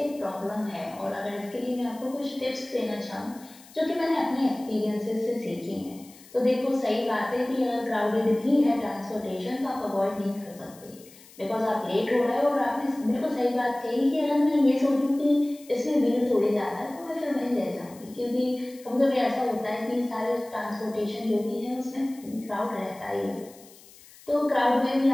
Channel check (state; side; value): noise; left; hiss, 23 dB below the sound